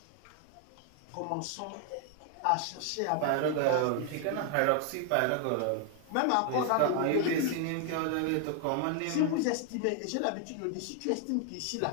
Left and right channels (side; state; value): both; different; correlation 0.00